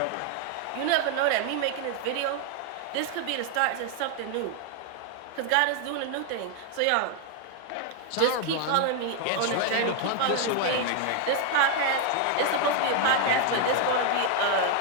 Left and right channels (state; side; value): different; both; correlation 0.00